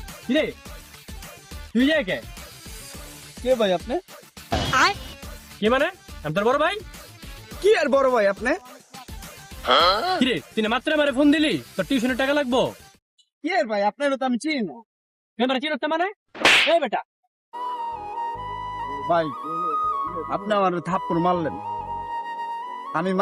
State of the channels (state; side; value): identical; both; correlation 1.00